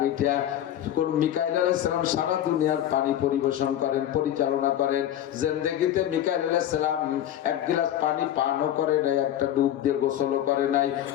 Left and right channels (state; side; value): quieter; right; 11.5 dB